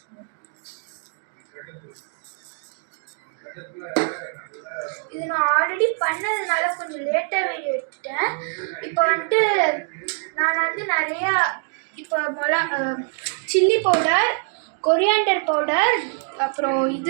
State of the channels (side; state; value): left; silent; 56 dB below the other